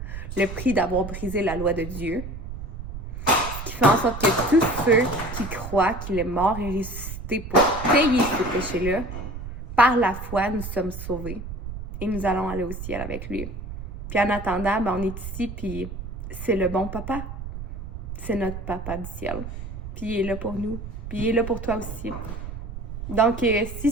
le prix d'avoir brisé la loi de Dieu, ce qui fait en sorte que tous ceux qui croient qu'il est mort et ressuscité pour payer ce péché-là, par la foi, nous sommes sauvés. Et nous allons aller au ciel avec lui. Puis en attendant, on est ici, puis c'est le bon papa. C'est notre papa du ciel. Puis il est là pour nous. Puis il est là pour toi aussi. Donc, si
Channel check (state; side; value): noise; right; rumble, 8 dB below the sound